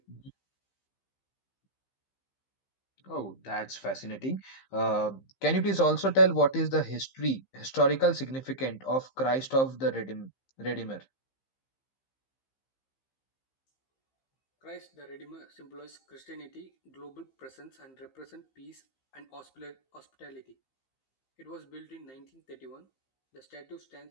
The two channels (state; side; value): late; right; 15 ms